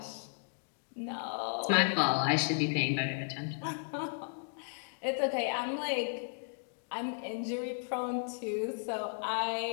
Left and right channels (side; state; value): right; silent; digital silence